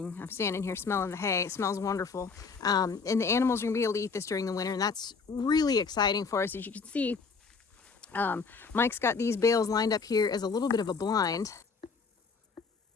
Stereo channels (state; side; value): quieter; right; 5.0 dB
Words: I'm standing here smelling the hay. It smells wonderful. And the animals are gonna be able to eat this during the winter, and that's really exciting for us. As you can see, Mike's got these bales lined up here as a little bit of a blind.